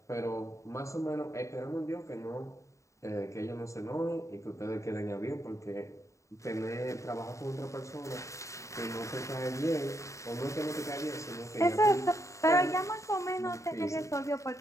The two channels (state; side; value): late; right; 0.15 ms